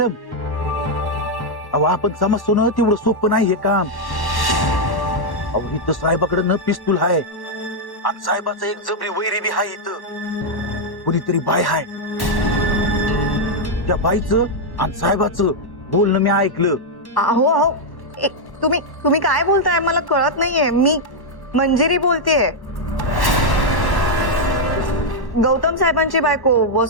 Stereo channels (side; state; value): right; late; 1.1 ms